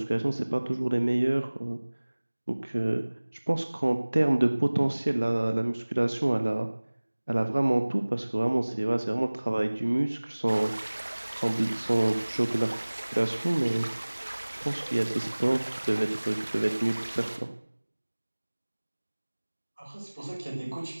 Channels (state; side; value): inverted; both; correlation -1.00